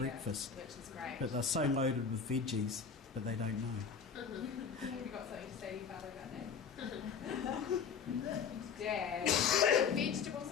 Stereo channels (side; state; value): right; quieter; 6.3 dB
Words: Which is great. But they're so loaded with veggies, but they don't know. Have you got something to say to your father about that? Dad, vegetables